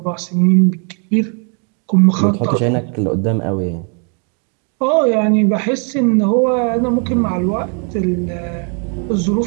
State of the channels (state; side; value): quieter; left; 39.5 dB